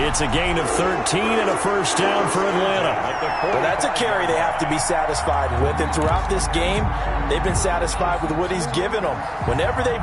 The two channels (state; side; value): identical; both; correlation 1.00